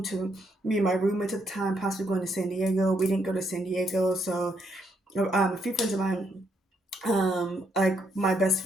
to me and my roommate at the time, possibly going to San Diego. We didn't go to San Diego, so a few friends of mine, like my best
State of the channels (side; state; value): both; normal; correlation 0.75